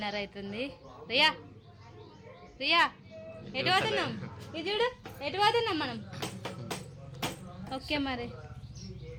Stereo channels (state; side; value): identical; both; correlation 1.00